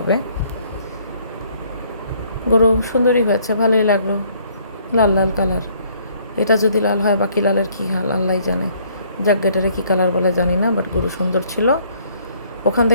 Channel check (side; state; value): both; inverted; correlation -0.63